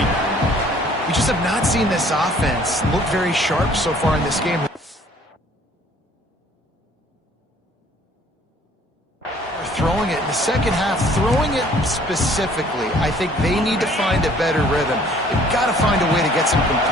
We just have not seen this offense look very sharp so far in this game. Throwing it in the second half, throwing it specifically, I think they need to find a better rhythm. They've got to find a way to get some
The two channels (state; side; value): normal; both; correlation 0.57